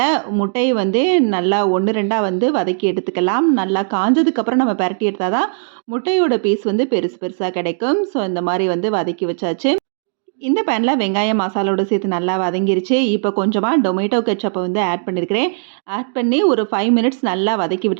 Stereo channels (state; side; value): silent; left; digital silence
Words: முட்டைய நல்லா 1, 2ஆ வதக்கி எடுத்துக்கலாம். நல்லா காஞ்சதுக்கப்புறம் நம்ம பெரட்டி எடுத்தா தான் முட்டையோட பீஸ் பெருசு பெருசா கிடைக்கும். ஸோ இந்த மாரி வதக்கி வச்சாச்சு. இந்த பேன்ல வெங்காயம் மசாலோட சேர்த்து நல்லா வதங்கிருச்சு. இப்போ கொஞ்சமா டொமேட்டோ கெட்சப்ப ஆட் பண்ணியிருக்கிறேன். ஆட் பண்ணி ஒரு 5 மினிட்ஸ் நல்லா வதக்கி